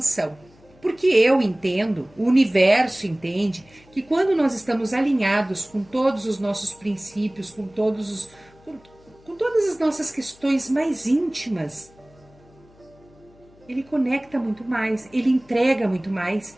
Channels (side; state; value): left; noise; hum, 28 dB below the sound